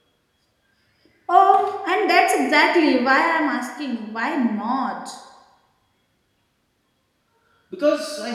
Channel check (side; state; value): both; identical; correlation 1.00